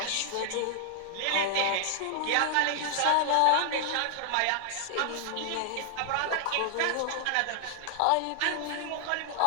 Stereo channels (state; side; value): different; both; correlation 0.00